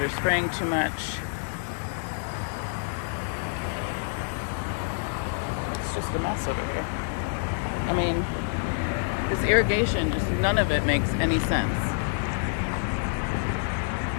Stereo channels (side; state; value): right; silent; 60 dB below the other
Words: are spraying too much. It's just a mess over here. I mean, this irrigation, just none of it makes any sense.